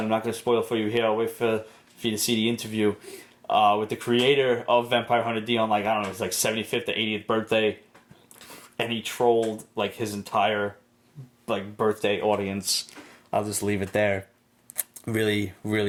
I'm not going to spoil for you here. I'll wait for you to see the interview with the creator of Vampire Hunter D on, like, I don't know, it was like 75th or 80th birthday. And he trolled like his entire like birthday audience. I'll just leave it there. Really,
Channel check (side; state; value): both; identical; correlation 1.00